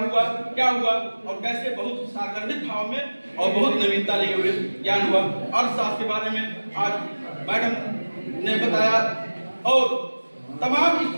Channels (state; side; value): inverted; both; correlation -1.00